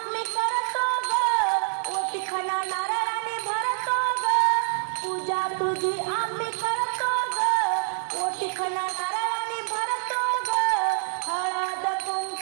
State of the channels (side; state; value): left; silent; digital silence